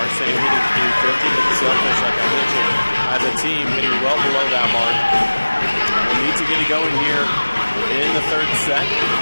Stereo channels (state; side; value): inverted; both; correlation -1.00